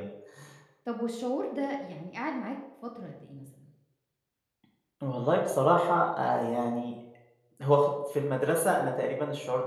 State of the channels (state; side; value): identical; both; correlation 1.00